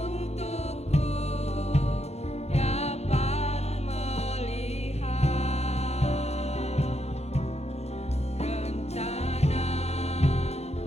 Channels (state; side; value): late; right; 0.31 ms